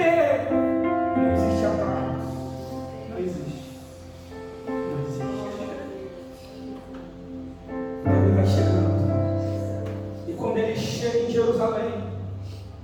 Não existe atalho. Não existe. Não existe. Ele vai chegando. E quando ele chega em Jerusalém,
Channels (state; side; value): identical; both; correlation 1.00